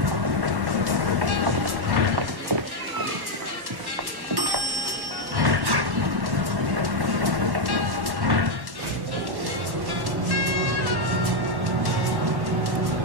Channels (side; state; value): left; late; 1.1 ms